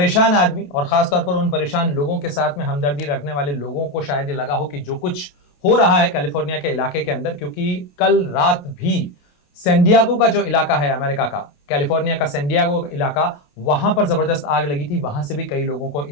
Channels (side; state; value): right; late; 28 ms